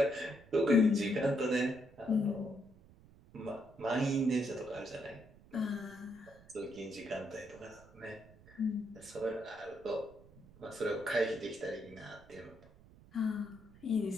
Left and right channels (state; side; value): noise; right; rumble, 23 dB below the sound